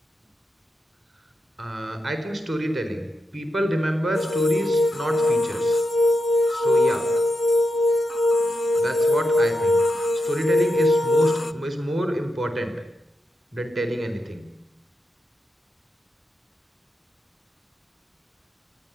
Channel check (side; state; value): both; normal; correlation 0.87